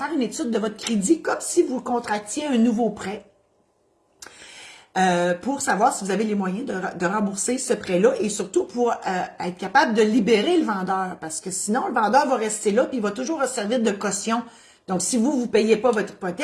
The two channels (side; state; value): both; identical; correlation 1.00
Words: une étude de votre crédit comme si vous contractiez un nouveau prêt pour savoir si vous avez les moyens de rembourser ce prêt-là et surtout pour être capable de libérer le vendeur parce que sinon, le vendeur va rester là puis il va toujours servir de caution. Donc, si vous ne payez pas votre